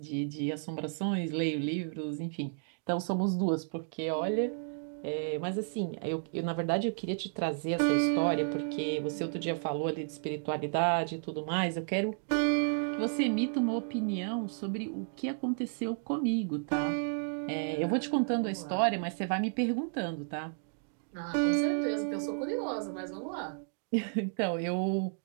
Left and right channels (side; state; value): left; silent; digital silence